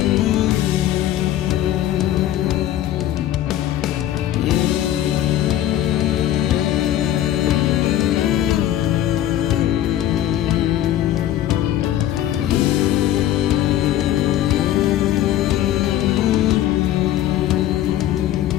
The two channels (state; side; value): quieter; right; 12.3 dB